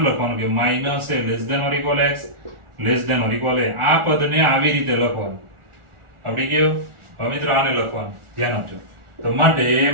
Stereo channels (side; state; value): left; late; 1.4 ms